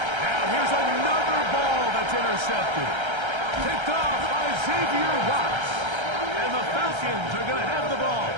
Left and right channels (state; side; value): late; left; 1.3 ms